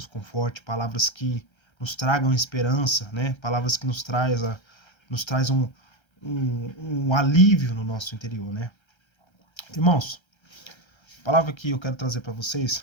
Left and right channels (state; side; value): late; right; 1.3 ms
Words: confortem, palavras que nos tragam esperança, Palavras que nos traz um alívio no nosso interior, Irmãos, a palavra que eu quero trazer para vocês